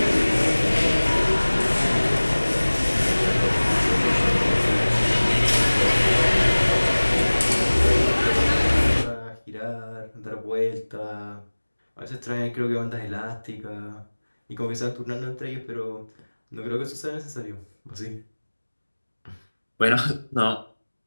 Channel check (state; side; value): inverted; both; correlation -1.00